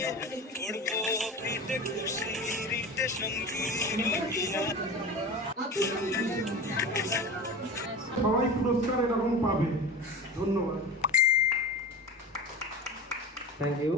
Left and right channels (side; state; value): both; normal; correlation 0.30